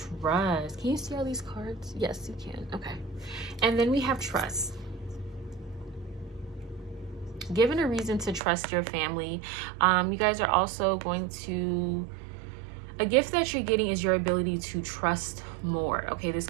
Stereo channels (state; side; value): drops out; left; at 8.4 s